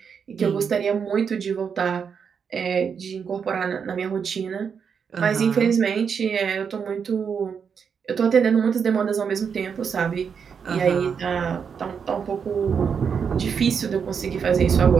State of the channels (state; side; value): quieter; left; 6.6 dB